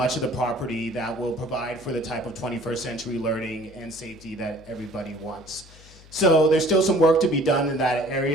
of the property that will provide for the type of 21st century learning and safety that everybody wants. So there's still some work to be done in that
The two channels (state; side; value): noise; left; hum, 22 dB below the sound